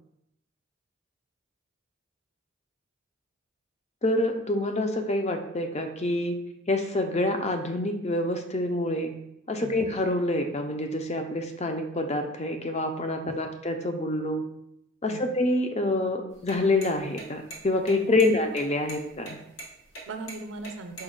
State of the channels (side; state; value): both; normal; correlation 0.43